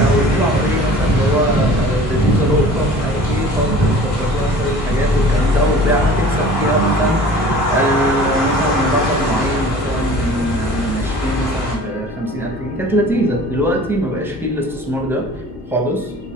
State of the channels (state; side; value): normal; both; correlation 0.45